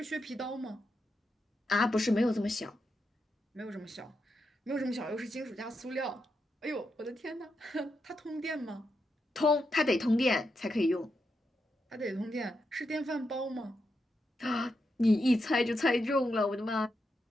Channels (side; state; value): both; normal; correlation 0.85